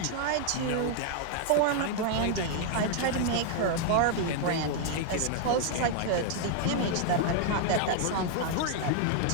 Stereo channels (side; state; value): both; different; correlation 0.00